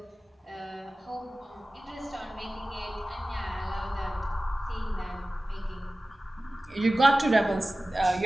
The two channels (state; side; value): normal; both; correlation 0.97